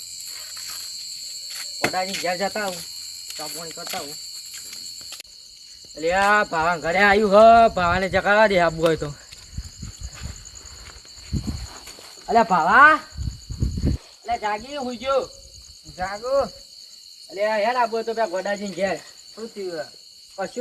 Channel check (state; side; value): identical; both; correlation 1.00